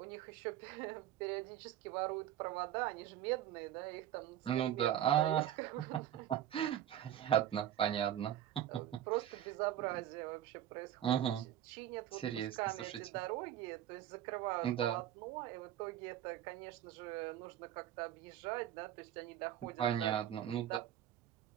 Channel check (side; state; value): left; quieter; 11.6 dB